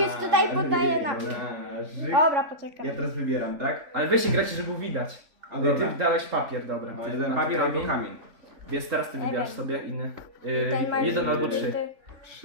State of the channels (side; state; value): left; late; 3.5 ms